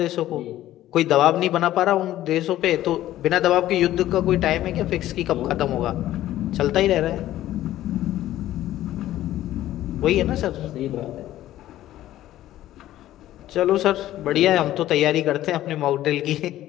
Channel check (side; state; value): right; quieter; 13.9 dB